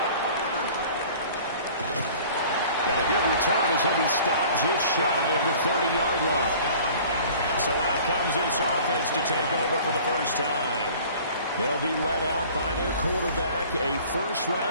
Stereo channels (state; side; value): inverted; both; correlation -0.47